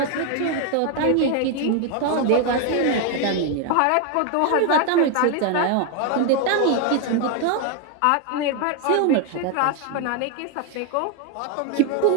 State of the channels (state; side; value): different; both; correlation 0.01